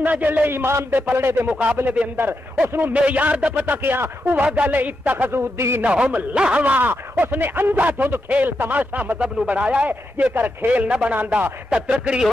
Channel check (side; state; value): both; normal; correlation 0.86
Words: جلے ایمان دے پلڑے دے مقابلے دے اندر اس نو معیار دا پتہ کیا وہ گل اتخذوا دینہم لہوا اس نے اندھا دھند کھیل تماشا مذہب نو بنایا ہے جے کر کھیل نہ بناندا تے ترکڑی